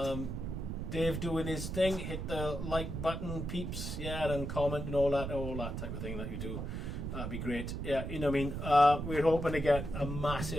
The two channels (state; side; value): noise; right; rumble, 4 dB below the sound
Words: Dave doing his thing. Hit the like button, peeps. Yeah, and comment and all that type of thing that you do. That'd be great. Yeah, you know what I mean. We're hoping to get a